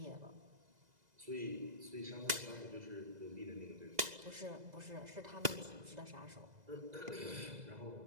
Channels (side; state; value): left; late; 2.0 ms